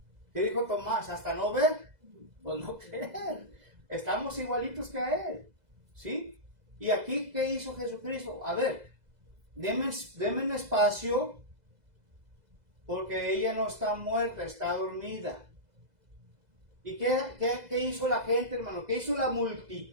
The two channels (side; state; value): left; late; 2.0 ms